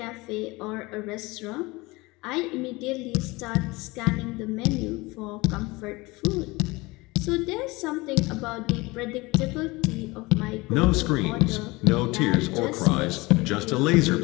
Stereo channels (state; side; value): quieter; right; 22.9 dB